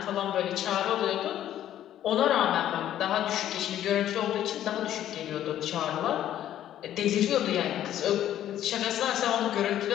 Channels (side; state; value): right; quieter; 11.7 dB